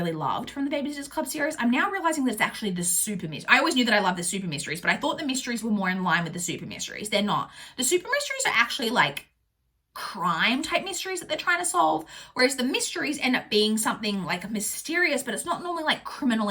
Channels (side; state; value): both; identical; correlation 1.00